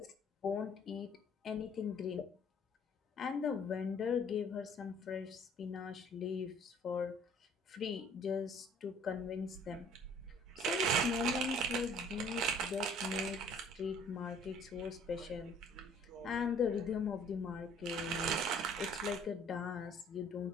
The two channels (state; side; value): normal; both; correlation 0.56